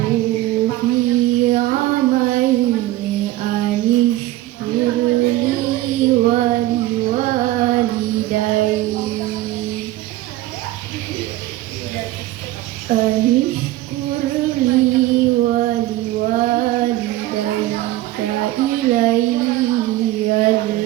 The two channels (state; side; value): quieter; left; 16.2 dB